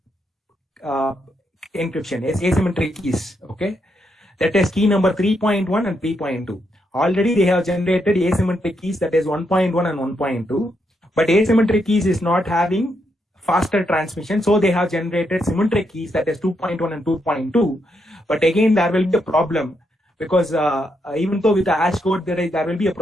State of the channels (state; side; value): normal; both; correlation 0.79